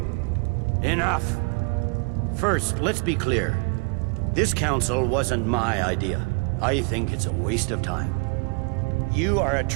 Enough! First, let's be clear. This council wasn't my idea. I think it's a waste of time. You are a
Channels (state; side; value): quieter; left; 31.2 dB